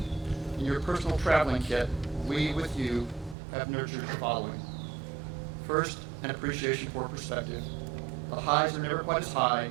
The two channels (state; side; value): drops out; left; at 3.4 s